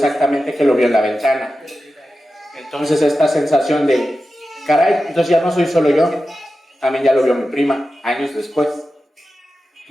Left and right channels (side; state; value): both; normal; correlation 0.92